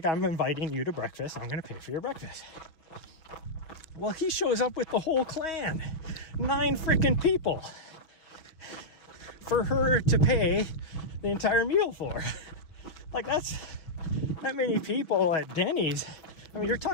I'm inviting you to breakfast. I'm going to pay for your breakfast. Well, he shows up with the whole clan, 9 freaking people, for her to pay the entire meal for. Like, that's that many people at Denny's. I mean, you're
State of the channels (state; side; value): late; right; 6.1 ms